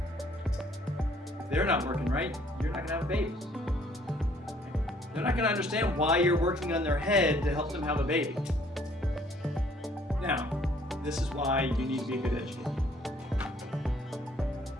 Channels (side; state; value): both; normal; correlation 0.61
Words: If they're not working right, you're not going to have a baby. They're not going to understand why you're working on their head to help them have a baby. Now, this is why you need to be a good educator.